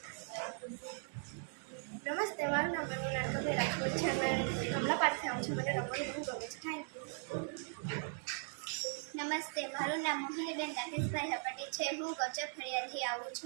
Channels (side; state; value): left; silent; 52 dB below the other